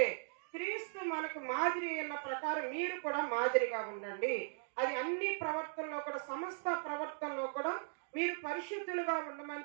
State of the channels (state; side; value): silent; left; digital silence